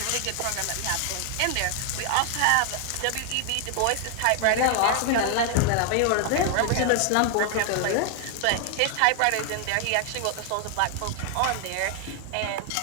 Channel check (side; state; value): both; different; correlation 0.00